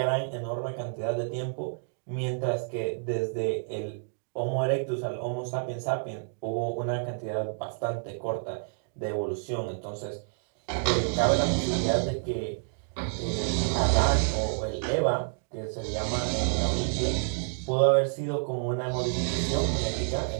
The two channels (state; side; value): silent; left; digital silence